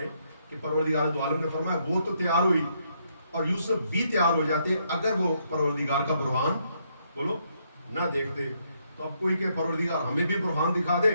کہ پروردگار دو عالم نے فرمایا وہ تو تیار ہوئی اور یوسف بھی تیار ہو جاتے اگر وہ پروردگار کا برہان بولو نہ دیکھتے۔ تو اب کوئی کہ پروردگار ہمیں بھی برہان دکھا دے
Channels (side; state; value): both; inverted; correlation -0.74